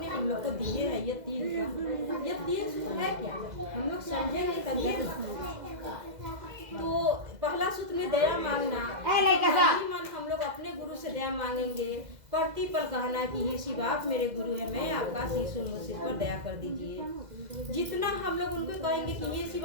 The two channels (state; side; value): late; left; 2.0 ms